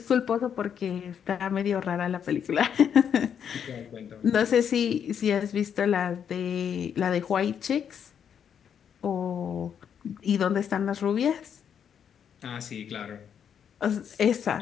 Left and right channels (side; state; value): right; quieter; 8.1 dB